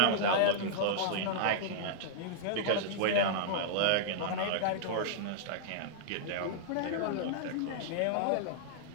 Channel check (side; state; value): both; different; correlation -0.02